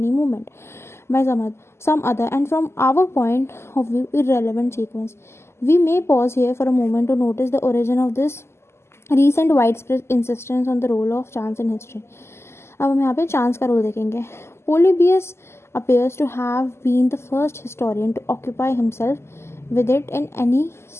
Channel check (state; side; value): late; right; 0.12 ms